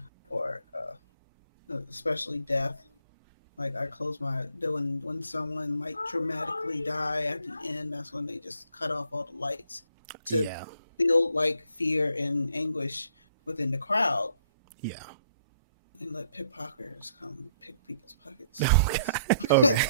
or especially death. Like I close when someone might dramatically die at the end, that's when they just cut off all the lights to build like fear and anguish within the crowd. Yeah. And let pickpocketers come pick people's pockets. Oh, God.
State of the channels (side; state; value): both; inverted; correlation -0.66